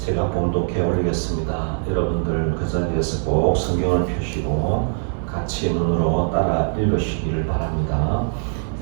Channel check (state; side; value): silent; left; 64 dB below the other